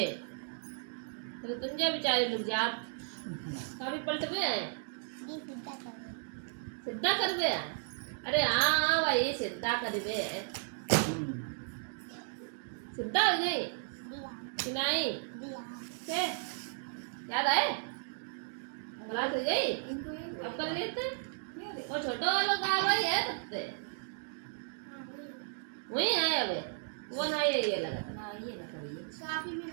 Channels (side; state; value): left; silent; digital silence